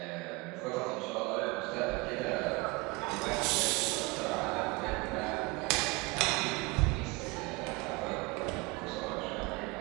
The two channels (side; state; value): left; quieter; 25.4 dB